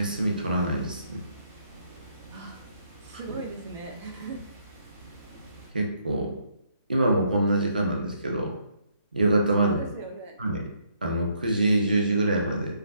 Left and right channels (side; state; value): both; inverted; correlation -0.71